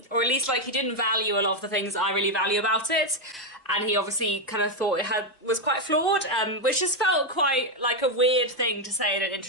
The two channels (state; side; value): normal; both; correlation 0.05